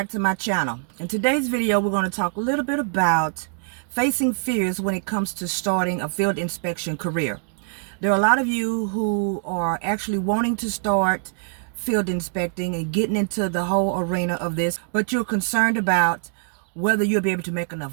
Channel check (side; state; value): left; silent; digital silence